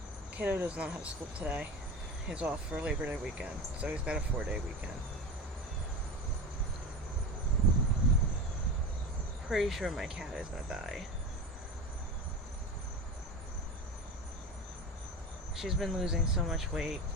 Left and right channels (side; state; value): both; normal; correlation 0.27